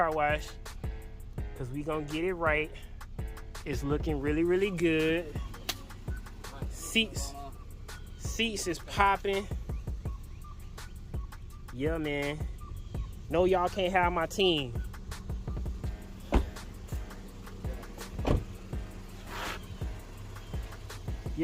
because we gonna get it right. It's looking really, really good. Seats is popping. Yeah, man. No, y'all can't have my team.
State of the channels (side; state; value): both; identical; correlation 1.00